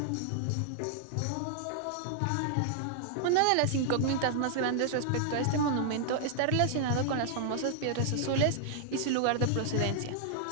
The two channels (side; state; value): both; different; correlation -0.01